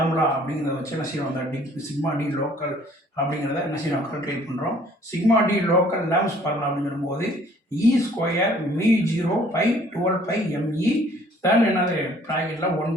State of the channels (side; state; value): both; normal; correlation 0.57